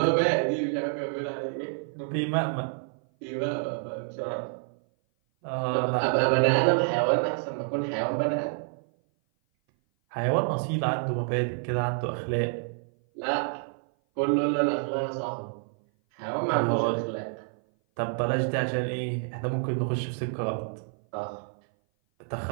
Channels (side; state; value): left; silent; 56 dB below the other